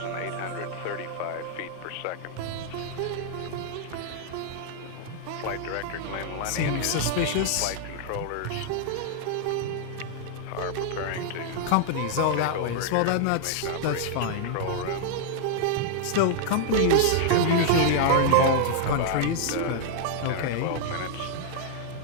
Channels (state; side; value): different; both; correlation -0.01